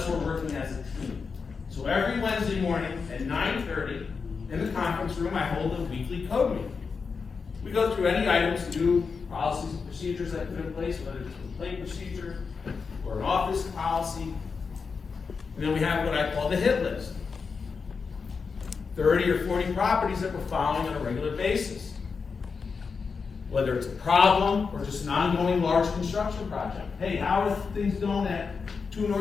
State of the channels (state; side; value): quieter; right; 5.2 dB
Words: we're working as a team. So every Wednesday morning at 9:30 in the conference room, I hold a weekly code meeting. We go through any items, new policies and procedures that put in place, whether it's a complaint procedure or an office policy. And then we have what I call the hit list. 30 or 40 properties that we're following on a regular basis. Whether it's a problem or just an ongoing large construction project. Hey, how are things going at 2